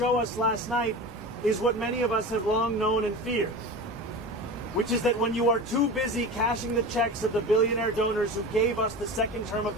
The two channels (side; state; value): both; normal; correlation 0.30